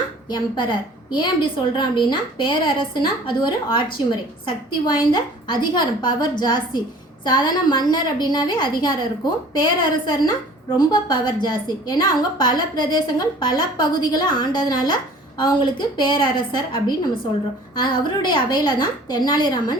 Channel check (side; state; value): both; normal; correlation 0.48